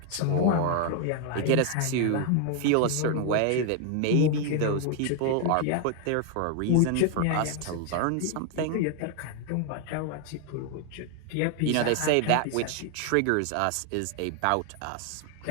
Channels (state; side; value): different; both; correlation 0.00